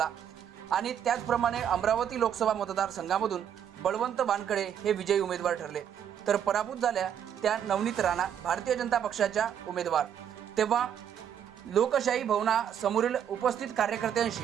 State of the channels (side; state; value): left; quieter; 9.0 dB